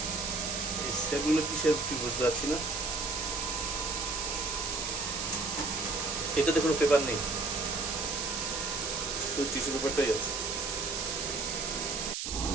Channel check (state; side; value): noise; right; hiss, 3 dB below the sound